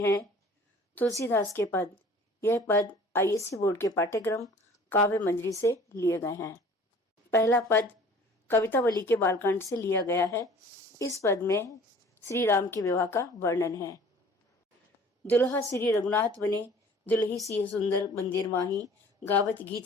तुलसीदास के पद। यह पद आईएससी बोर्ड के पाठ्यक्रम काव्य मंजरी से लिए गए हैं। पहला पद कवितावली के बालकांड से लिया गया है। इस पद में श्री राम के विवाह का वर्णन है। दुल्हा श्री रघुनाथ बने, दुल्ही सी सुंदर मंदिर माही, गावत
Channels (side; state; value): both; normal; correlation 0.49